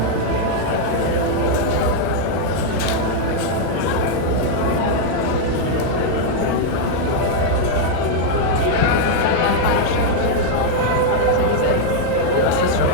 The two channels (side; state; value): both; different; correlation 0.00